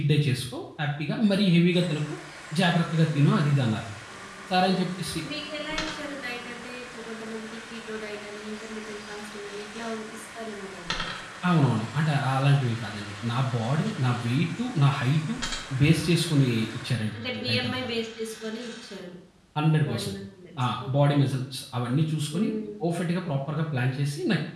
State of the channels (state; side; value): identical; both; correlation 1.00